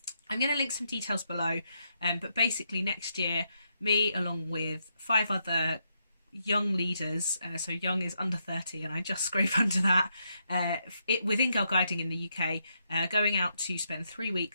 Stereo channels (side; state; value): both; inverted; correlation -0.79